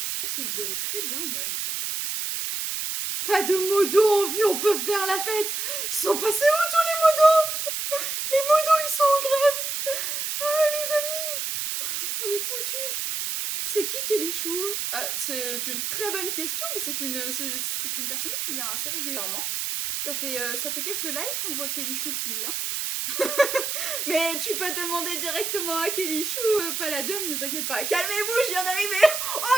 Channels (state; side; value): noise; right; hiss, 2 dB below the sound